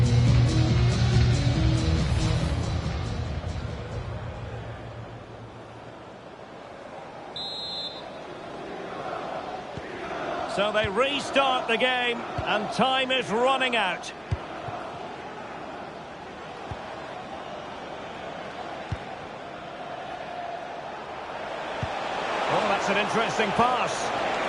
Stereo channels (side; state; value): both; identical; correlation 1.00